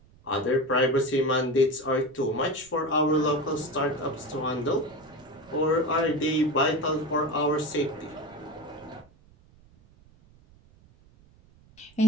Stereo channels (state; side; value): noise; right; rumble, 27 dB below the sound